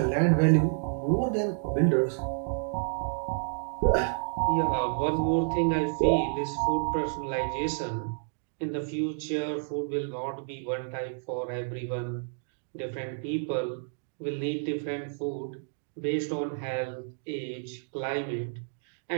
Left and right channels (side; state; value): left; silent; digital silence